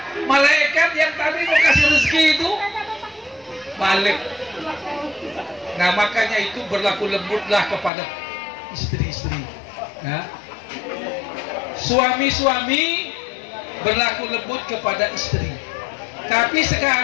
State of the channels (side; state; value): right; drops out; at 7.9 s